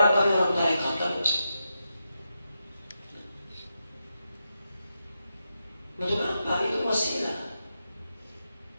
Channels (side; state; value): both; inverted; correlation -0.87